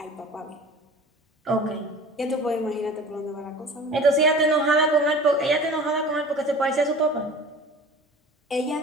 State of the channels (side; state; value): both; normal; correlation 0.41